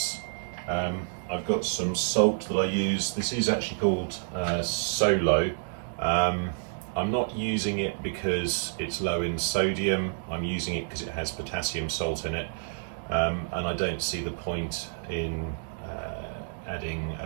I've got some salt that I use. This is actually called Solo. I'm not using it because it's low in sodium. I'm using it because it has potassium salt in it, and I don't see the point in adding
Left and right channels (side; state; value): left; silent; digital silence